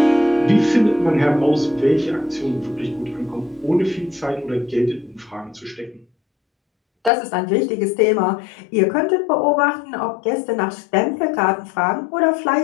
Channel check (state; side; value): drops out; right; at 7.1 s